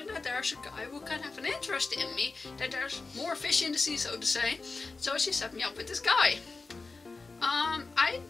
that there's a guy who can have an interest in me, that there's more fish in the sea, so to say. So she set me up with this guy. I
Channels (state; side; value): quieter; right; 3.9 dB